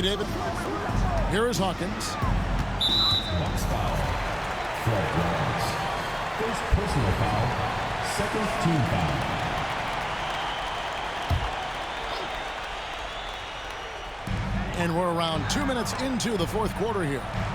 David. Here is Hawkins. Box foul. Fred Roberts. First personal foul. Second team foul. And we're around 2 minutes into the fourth quarter here.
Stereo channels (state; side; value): identical; both; correlation 1.00